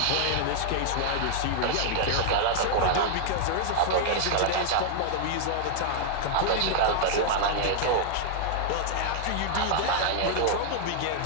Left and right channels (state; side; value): different; both; correlation 0.00